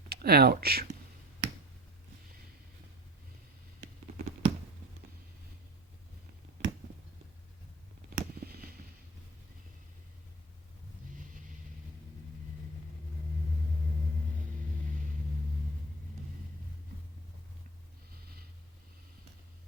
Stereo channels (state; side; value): normal; both; correlation 0.37